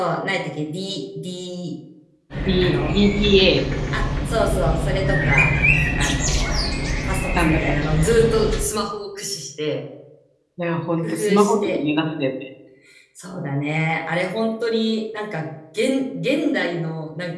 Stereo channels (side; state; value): both; identical; correlation 1.00